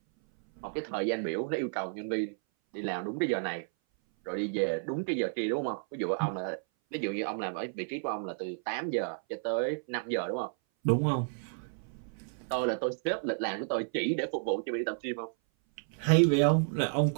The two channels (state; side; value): silent; left; 57 dB below the other